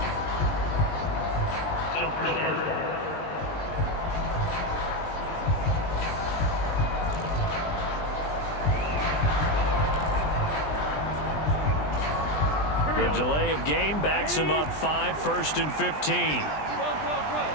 The delay of game backs him up 5, 1st and 15.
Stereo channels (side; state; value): right; late; 20 ms